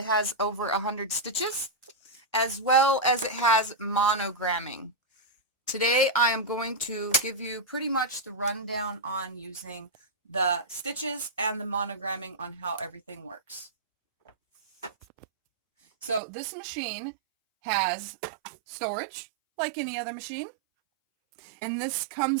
has over 100 stitches, as well as it has monogramming. Today I am going to give you pretty much the rundown on using the stitches and the monogramming on how everything works. So this machine has storage like any other machine, and this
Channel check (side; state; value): left; drops out; at 16.2 s